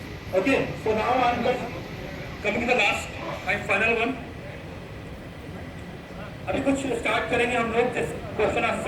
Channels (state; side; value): identical; both; correlation 1.00